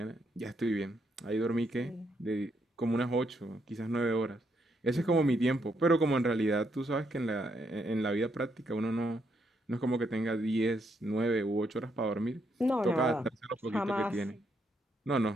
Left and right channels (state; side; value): normal; both; correlation 0.76